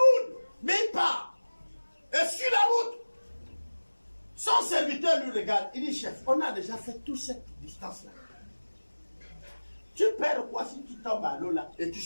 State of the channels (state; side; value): inverted; both; correlation -1.00